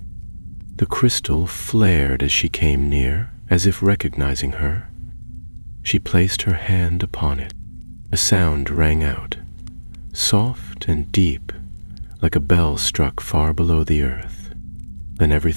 The crystal flared as she came near, as if recognizing her. She placed her hand upon it. A sound rang out, soft and deep, like a bell struck far below the earth. Then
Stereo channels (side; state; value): both; inverted; correlation -1.00